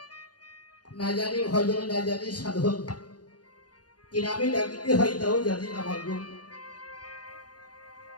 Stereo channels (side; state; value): right; late; 0.69 ms